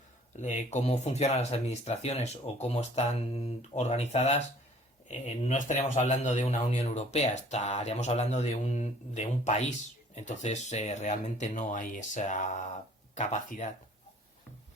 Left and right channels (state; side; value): normal; both; correlation 0.54